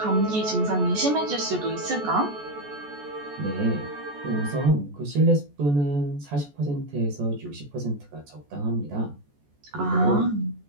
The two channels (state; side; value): late; left; 14 ms